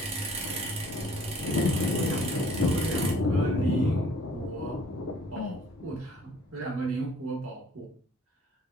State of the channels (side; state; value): both; normal; correlation 0.56